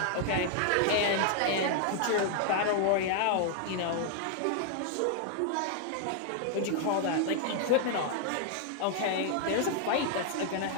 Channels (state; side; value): different; both; correlation 0.00